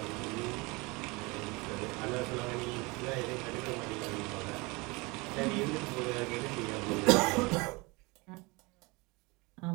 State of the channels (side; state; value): left; quieter; 25.8 dB